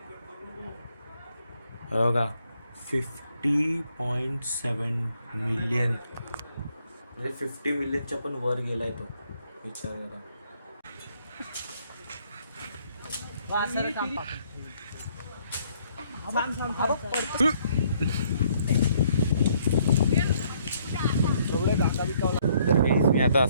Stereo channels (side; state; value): both; inverted; correlation -0.67